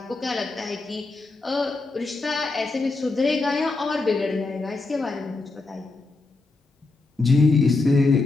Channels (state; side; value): quieter; right; 3.5 dB